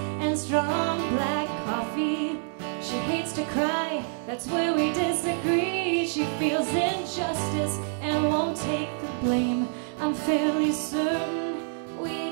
and strong black coffee. She hates to cry, that's where we disagree. She feels injustice and won't take the blame. I'm fairly certain we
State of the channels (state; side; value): silent; left; 60 dB below the other